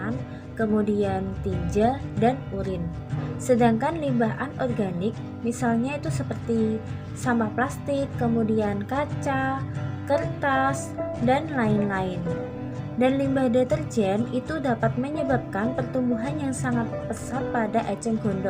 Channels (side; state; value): both; identical; correlation 1.00